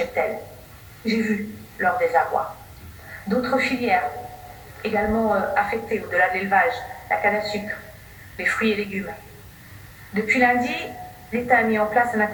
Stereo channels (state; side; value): identical; both; correlation 1.00